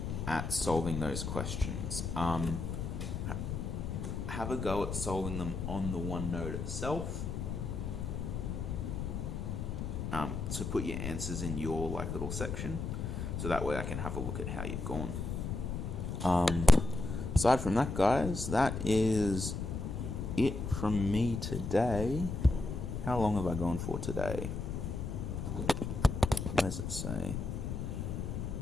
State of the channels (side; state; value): left; noise; rumble, 4 dB below the sound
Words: at solving those questions. Have a go at solving them on the OneNote itself. So put your answers in your little section, so that way I can have a look at how you've gone. Aside from that, guys, that is it from me today. How long have I gone for today? What does it say?